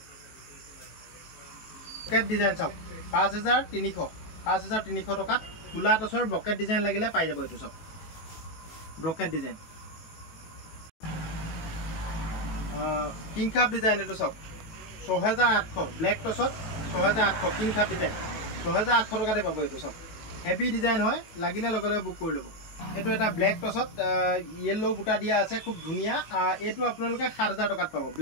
ব্লকেট ডিজাইন চাওক 5300 টকাত ফুলা টচৰ ব্লকেট ডিজাইন লাগিলে পাই যাব এইটো চাওক blockade design king cup design এইটো চাওক 6800 ব্লেক টচত 6800 কিং কাপ ডিজাইন 6800 টকাতে পাব এইটো চাওক হেভি ডিজাইন হয় লাগিলে লগে লগে বুক কৰি ল'ব এইটো এটা ব্লেক টচত ইয়েলো বুটা দিয়া আছে খুব ধুনীয়া এইটো আপোনালোকে 7000 টকাত পাব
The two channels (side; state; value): right; late; 18 ms